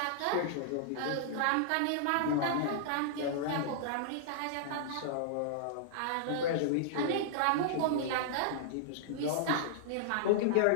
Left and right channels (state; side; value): different; both; correlation -0.01